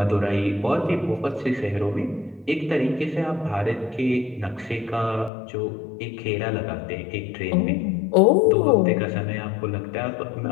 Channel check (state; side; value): drops out; right; at 5.3 s